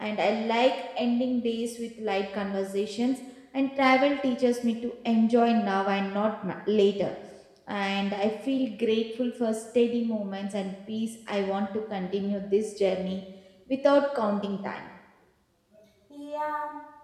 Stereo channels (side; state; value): both; identical; correlation 1.00